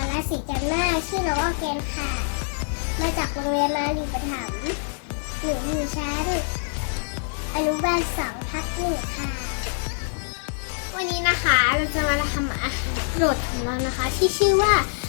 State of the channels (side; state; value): right; silent; 62 dB below the other